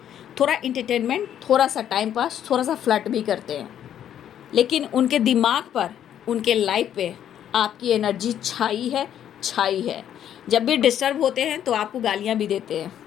थोड़ा इंटरटेनमेंट, थोड़ा सा टाइम पास, थोड़ा सा फ्लर्ट भी करते हैं, लेकिन उनके दिमाग पर, उनके लाइफ पे आपकी एनर्जी छाई है, छाई है। जब भी डिस्टर्ब होते हैं तो आपको गालियाँ भी देते हैं,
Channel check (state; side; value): quieter; right; 10.2 dB